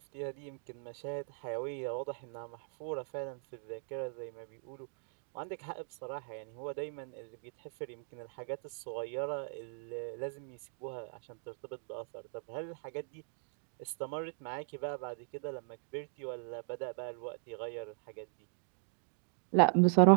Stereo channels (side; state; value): left; silent; digital silence